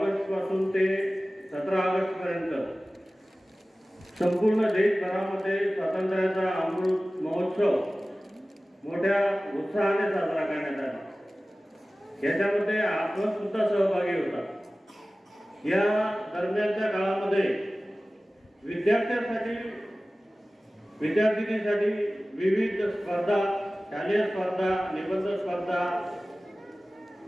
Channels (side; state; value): both; normal; correlation 0.97